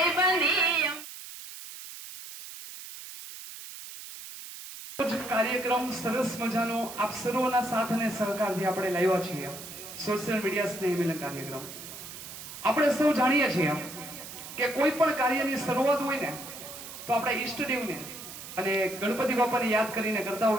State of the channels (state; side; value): noise; right; hiss, 12 dB below the sound